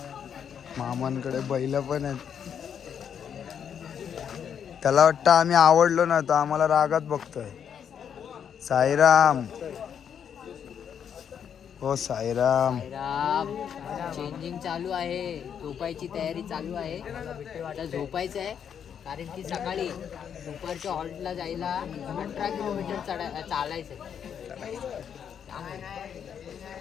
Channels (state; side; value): quieter; right; 8.1 dB